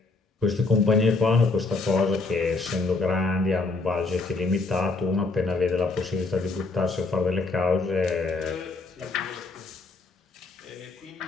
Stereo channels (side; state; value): right; quieter; 3.7 dB